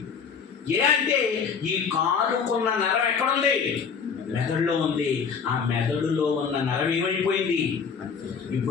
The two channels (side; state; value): right; quieter; 6.1 dB